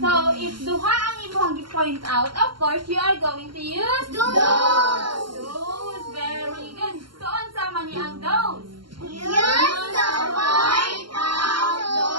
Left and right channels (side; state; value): left; late; 0.72 ms